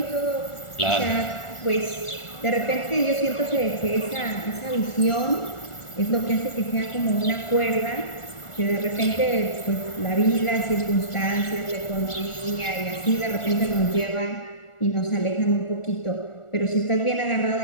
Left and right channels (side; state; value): right; late; 1.4 ms